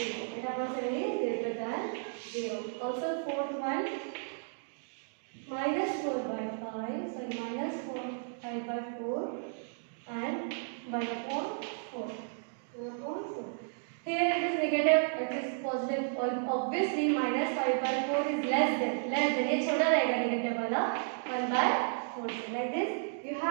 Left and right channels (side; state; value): left; silent; digital silence